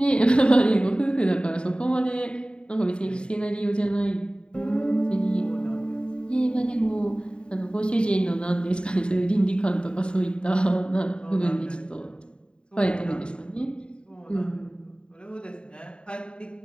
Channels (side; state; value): right; late; 0.052 ms